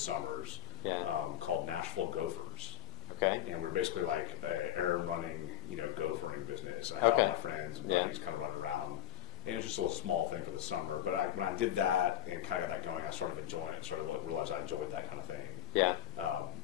called Nashville Gophers. Okay. And we're basically like a errand running, gophering business. And I had all my friends and buddies kind of running around. And it was just a little small thing for the summer. But when I did that and kind of got that going, I started enjoying it. Started to realize I enjoyed that kind of thing. Yeah.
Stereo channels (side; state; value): right; quieter; 12.3 dB